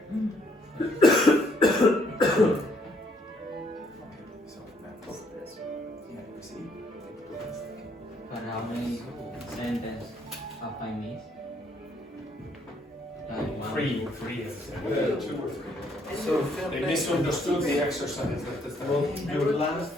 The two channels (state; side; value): normal; both; correlation 0.68